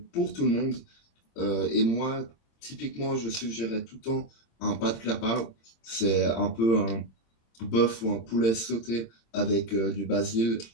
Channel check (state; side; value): late; right; 26 ms